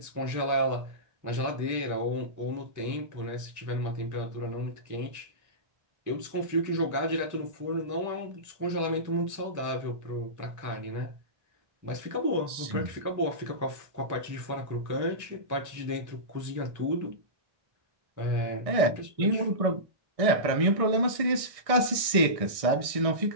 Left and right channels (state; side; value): late; left; 1.6 ms